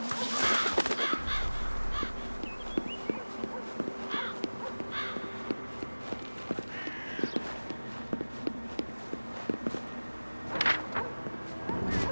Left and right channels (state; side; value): inverted; both; correlation -1.00